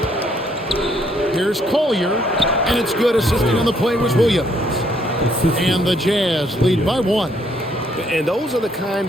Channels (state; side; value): normal; both; correlation 0.69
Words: Here's Collier. And it's good. Assisting on the play was Williams. And the Jazz lead by one. And those are the